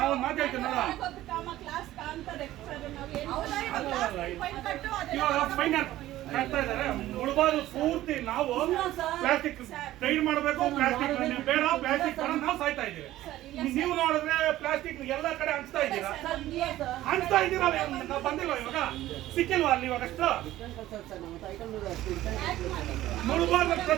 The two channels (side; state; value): left; quieter; 14.9 dB